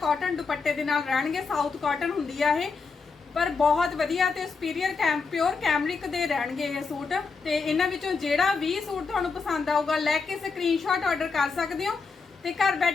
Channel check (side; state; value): right; quieter; 4.8 dB